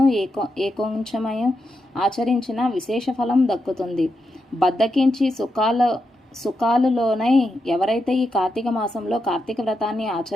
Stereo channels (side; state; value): both; normal; correlation 0.85